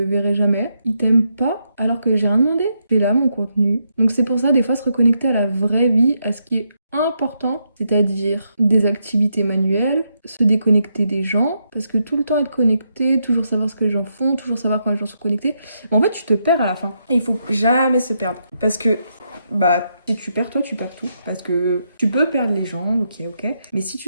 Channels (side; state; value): both; inverted; correlation -0.80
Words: verrai jamais. Ils t'aiment pas alors que j'ai rien demandé. C'est là mon contenu. Donc c'est pour ça, des fois, se reconnecter à la vraie vie, à ce qui est important, c'est-à-dire des activités manuelles, se déconnecter des gens, parce que tout le temps être connecté, toujours savoir ce que les gens font, toujours savoir quand les gens sont connectés, en fait tu te perds à la fin. Et il faut jamais se perdre, parce que si tu perds toi, tu perds tout, parce que tu peux perdre les gens, ok, mais si